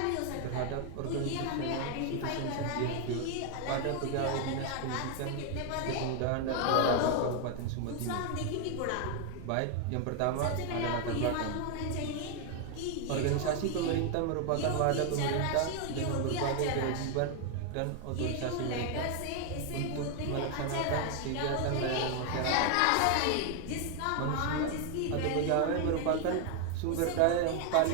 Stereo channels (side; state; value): both; different; correlation 0.01